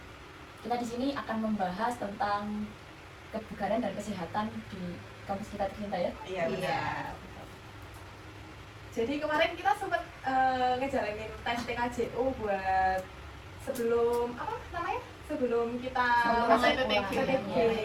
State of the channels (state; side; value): identical; both; correlation 1.00